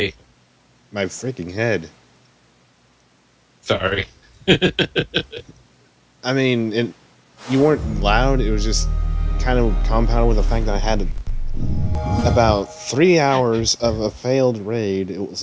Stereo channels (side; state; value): both; identical; correlation 1.00